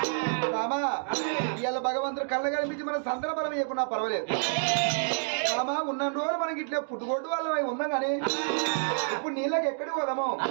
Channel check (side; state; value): left; silent; digital silence